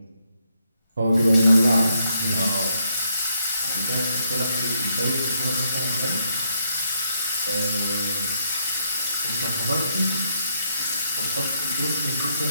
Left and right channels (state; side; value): inverted; both; correlation -0.75